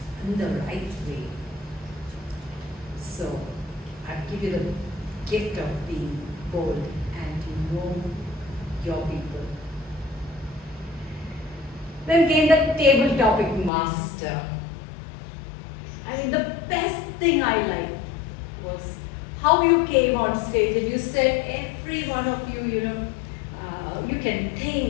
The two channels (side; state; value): right; drops out; at 13.7 s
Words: in the right way. So I give you the gift of being bold and to know your people. Then came the table topic master. I mean, the best thing I liked was how you came on stage and you said every one of you, you can